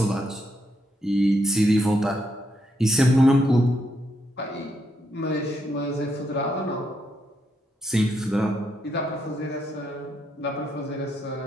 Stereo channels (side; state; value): both; normal; correlation 0.78